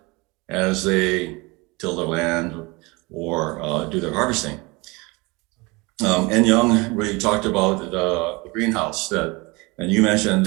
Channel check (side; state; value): left; quieter; 25.4 dB